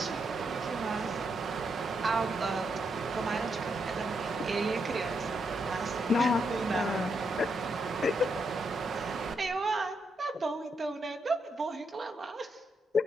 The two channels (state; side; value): normal; both; correlation 0.80